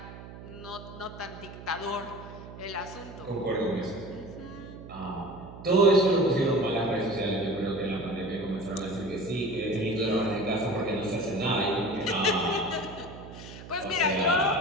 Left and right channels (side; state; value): right; noise; hum, 14 dB below the sound